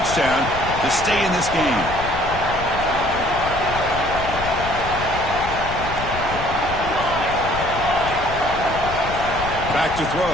to stay in this game. Back to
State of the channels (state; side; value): noise; left; rumble, 9 dB below the sound